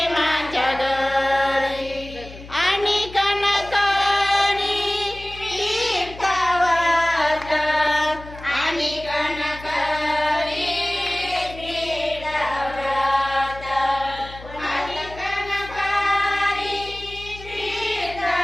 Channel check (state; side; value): noise; left; hum, 16 dB below the sound